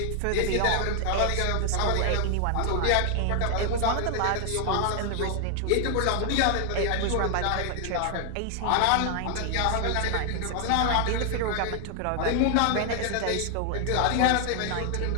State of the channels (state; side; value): different; both; correlation 0.00